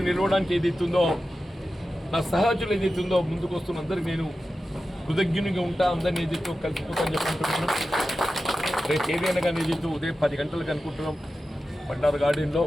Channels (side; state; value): both; normal; correlation 0.93